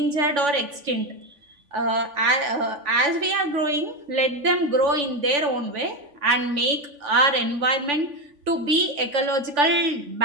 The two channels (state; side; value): late; left; 3.5 ms